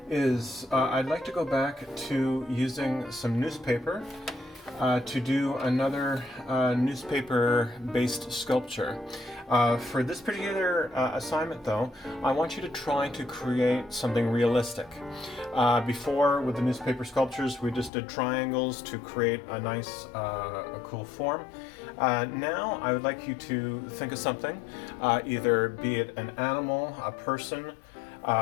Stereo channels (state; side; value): drops out; right; at 17.9 s